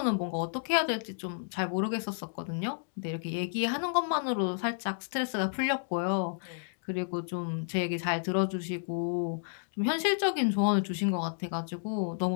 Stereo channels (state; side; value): silent; right; digital silence